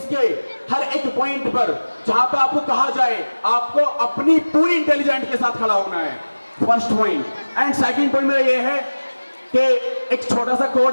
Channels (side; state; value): both; inverted; correlation -1.00